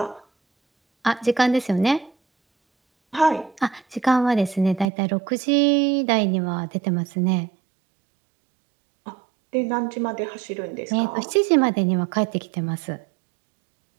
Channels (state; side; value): drops out; left; at 4.9 s